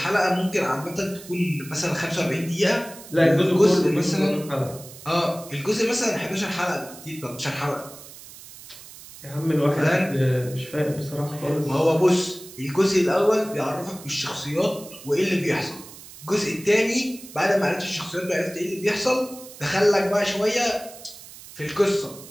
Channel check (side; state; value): right; noise; hiss, 17 dB below the sound